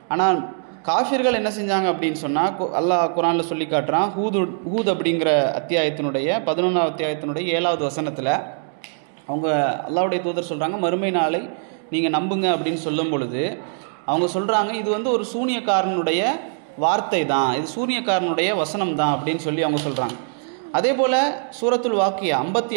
ஆனால் காஃபிர்கள் என்ன செஞ்சாங்க அப்படின்னு சொன்னால், அல்லாஹ் குர்ஆனில் சொல்லி காட்டுறான். ஹூத் அப்படிங்கிற அத்தியாயத்தினுடைய 11ஆவது அத்தியாயத்தினுடைய 7வது வசனத்தில் அவங்க அல்லாஹ்வுடைய தூதர் சொல்கிறாங்க, மறுமை நாளை நீங்கள் நம்புங்க அப்படின்னு சொல்லும் பொழுது அவங்க சொல்கிறாங்க, இது ஒரு சூனியக்காரனுடைய வார்த்தை தான், இது சூனியக்காரனுடைய வசனம் தான் அப்படின்னு சொல்லி அவங்க சொல்கிறாங்க. அதே போல் சூரத்துல் வாக்கியா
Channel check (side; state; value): left; silent; digital silence